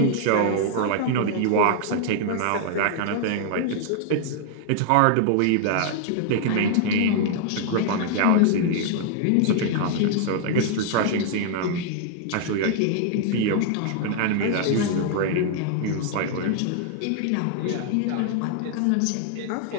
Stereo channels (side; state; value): both; different; correlation 0.00